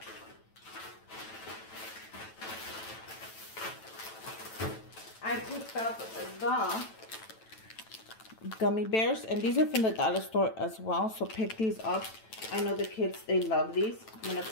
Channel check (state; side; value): late; right; 9.1 ms